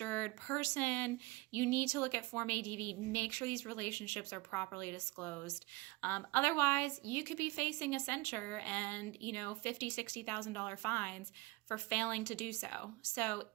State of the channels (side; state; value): left; quieter; 23.1 dB